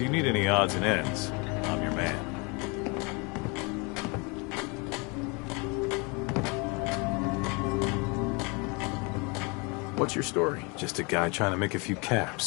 need any odds and ends, I'm your man. What's your story? Just a guy trying to make a few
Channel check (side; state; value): right; quieter; 30.2 dB